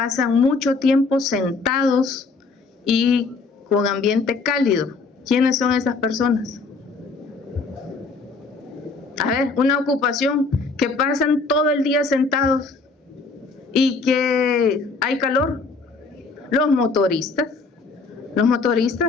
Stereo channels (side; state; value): right; quieter; 4.1 dB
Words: mucho tiempo sentados y con ambiente cálido. ¿Quiénes son esas personas? A ver, una ocupación que pasan todo el día sentados y que hay calor. Los motoristas